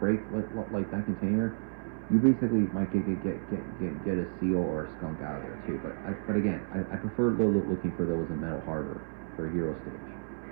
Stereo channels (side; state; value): left; silent; 57 dB below the other